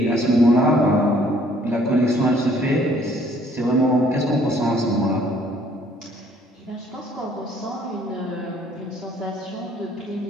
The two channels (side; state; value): both; normal; correlation 0.61